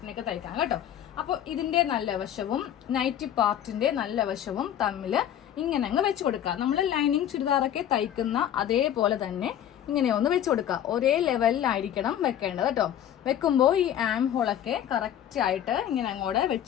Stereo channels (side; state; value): right; quieter; 10.5 dB